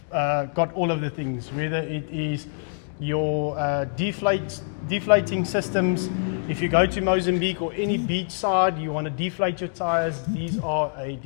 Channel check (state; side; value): silent; right; digital silence